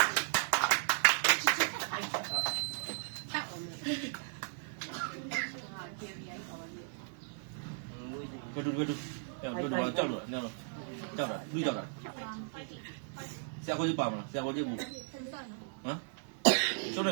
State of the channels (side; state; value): left; silent; digital silence